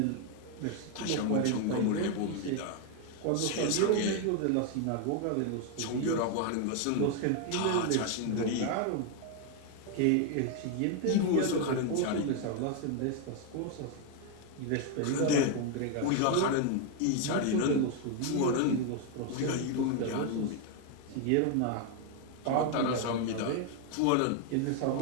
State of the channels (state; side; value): different; both; correlation 0.01